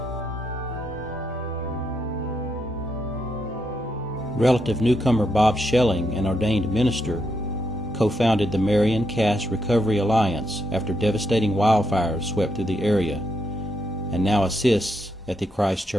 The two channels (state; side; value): normal; both; correlation 0.79